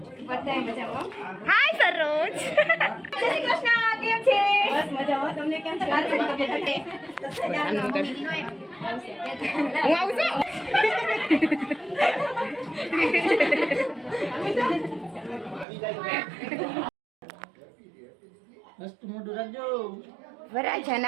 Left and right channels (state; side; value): drops out; left; at 15.7 s